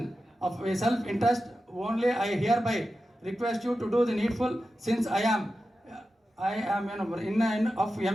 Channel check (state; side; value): normal; both; correlation 0.92